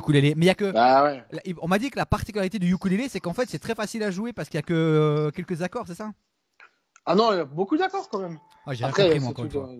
mais il y a que. Bah ouais. On m'a dit que la particularité du ukulélé, c'est qu'en fait, c'est très facile à jouer parce qu'il y a que quelques accords, c'est ça? Ah non, il y a beaucoup d'accords quand même. Ah, j'ai rien Après, compris, c'est moi, encore une tout, fois.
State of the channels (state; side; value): identical; both; correlation 1.00